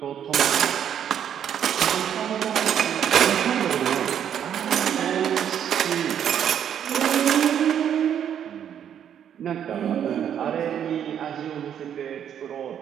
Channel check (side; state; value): left; quieter; 9.2 dB